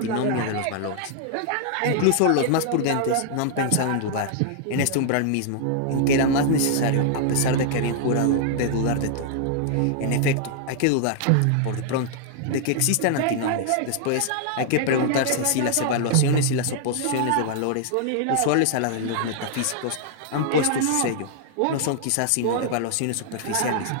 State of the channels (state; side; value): different; both; correlation -0.01